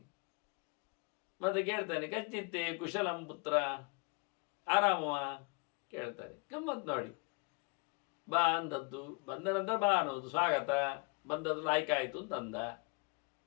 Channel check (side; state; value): right; quieter; 30.8 dB